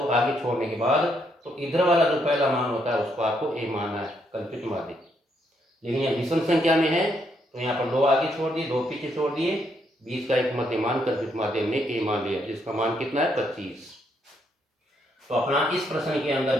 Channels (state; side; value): normal; both; correlation 0.75